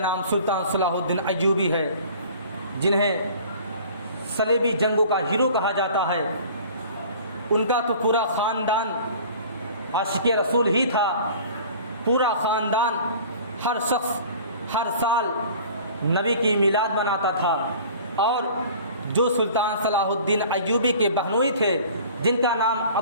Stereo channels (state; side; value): inverted; both; correlation -0.45